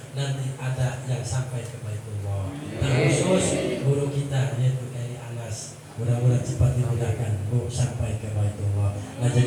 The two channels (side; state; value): both; identical; correlation 1.00